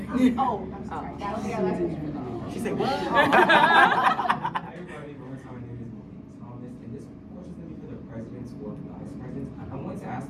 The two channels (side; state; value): both; identical; correlation 1.00